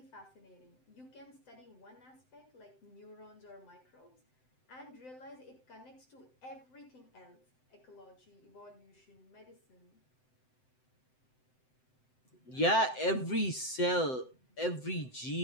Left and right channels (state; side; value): late; right; 7.8 ms